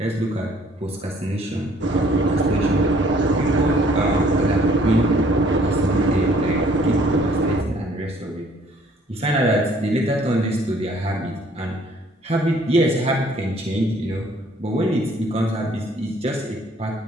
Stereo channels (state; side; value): normal; both; correlation 0.59